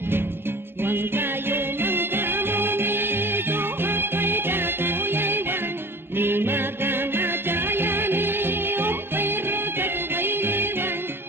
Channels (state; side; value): late; left; 0.11 ms